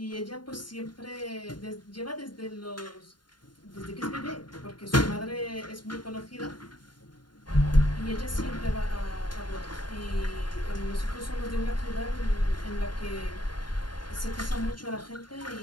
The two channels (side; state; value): right; late; 0.71 ms